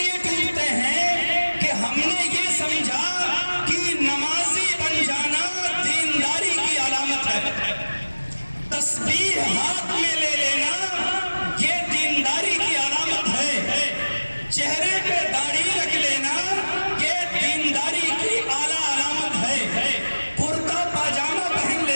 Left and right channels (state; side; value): inverted; both; correlation -1.00